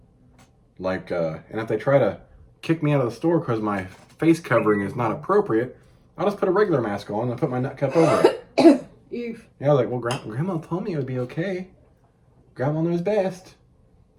Like, and if they try to kick me out of the store because my face covering is not appropriate, I'll just put a regular mask on and put my nut cup over it. Oof. Yeah, I was like, well, Grandma told me it would be okay. Grandma knows best.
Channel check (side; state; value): both; identical; correlation 1.00